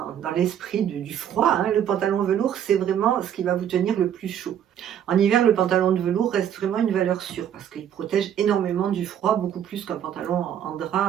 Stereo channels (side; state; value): left; quieter; 9.6 dB